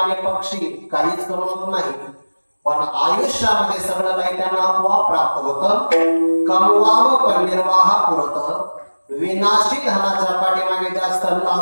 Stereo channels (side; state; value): both; inverted; correlation -1.00